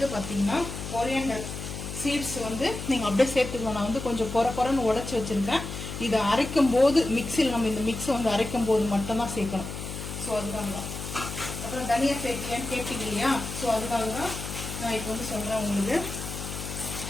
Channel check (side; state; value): left; noise; hum, 8 dB below the sound